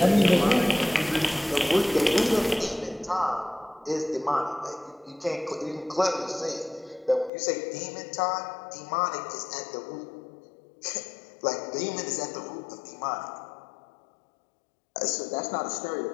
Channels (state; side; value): drops out; right; at 7.3 s